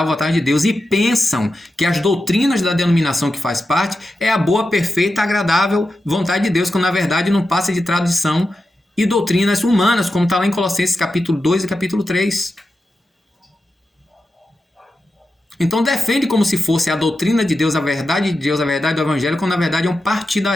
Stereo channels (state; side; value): normal; both; correlation 0.90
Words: vontade de Deus, e pensam que as doutrinas da denominação que faz parte é a boa, perfeita, agradável vontade de Deus, quando na verdade não passa de tradição e doutrinas humanas, como está lá em Colossenses capítulo 2 e capítulo 3. Então defende como se fosse a doutrina de Deus, a verdade de Deus, a verdade do Evangelho, quando na verdade é um